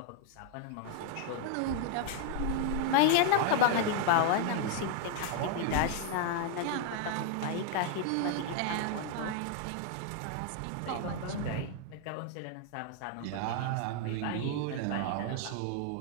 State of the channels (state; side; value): different; both; correlation 0.00